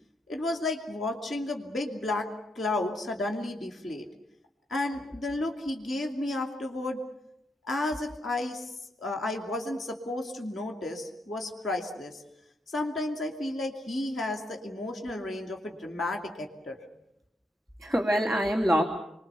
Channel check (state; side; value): normal; both; correlation 0.79